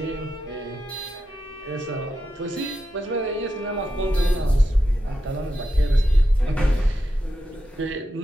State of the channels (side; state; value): both; normal; correlation 0.88